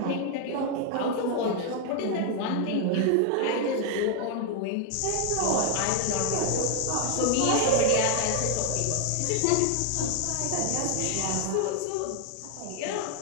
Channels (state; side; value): different; both; correlation 0.00